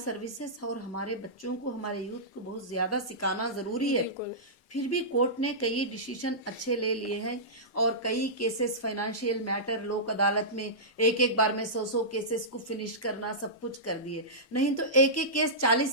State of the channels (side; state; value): both; normal; correlation -0.17